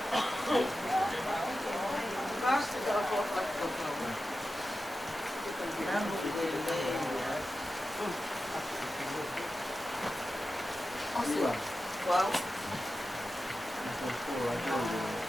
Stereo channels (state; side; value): normal; both; correlation 0.92